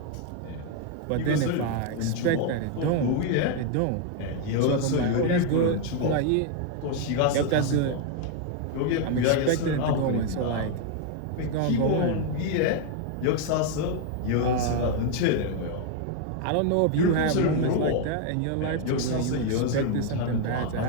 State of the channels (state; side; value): different; both; correlation 0.01